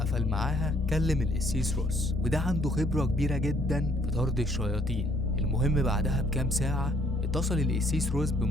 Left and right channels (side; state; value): both; normal; correlation 0.65